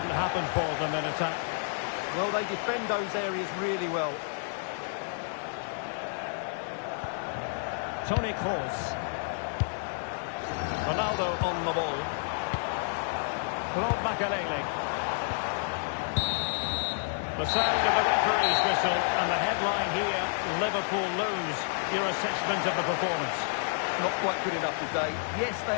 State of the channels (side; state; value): right; silent; 58 dB below the other